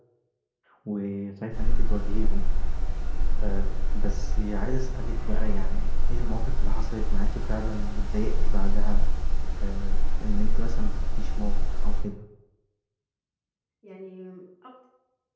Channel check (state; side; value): identical; both; correlation 1.00